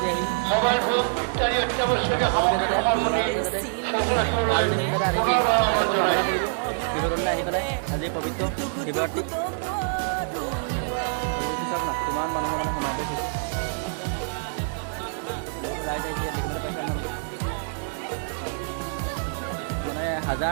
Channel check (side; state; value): left; silent; digital silence